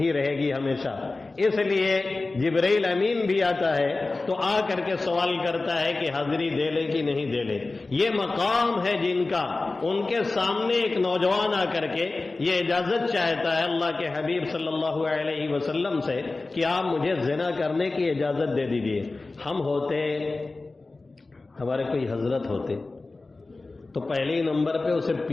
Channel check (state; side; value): quieter; right; 3.4 dB